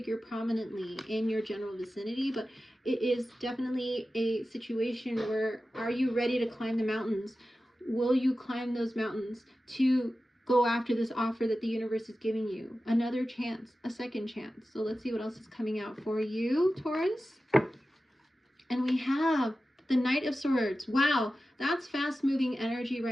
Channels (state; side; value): normal; both; correlation 0.94